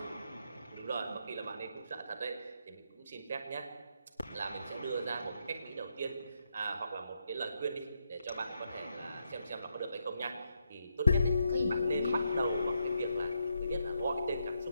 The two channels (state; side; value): inverted; both; correlation -0.80